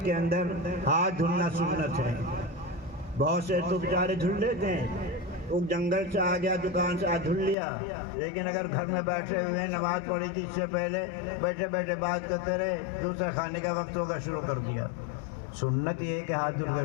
کے اندر ہاتھ دھلنا سنت ہے. بہت سے تو بیچارے دھل لیتے ہیں، وہ جنگل سے آ گیا، دکان سے دھل لیا، لیکن اگر گھر میں بیٹھے ہوئے نماز پڑھی تھی اس سے پہلے بیٹھے بیٹھے بات کرتے رہے، دوسرا کھانے کا وقت ہوگا شروع کر دیا. سنت یہ ہے کہ ہاتھ دھل کر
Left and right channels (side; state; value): right; drops out; at 7.6 s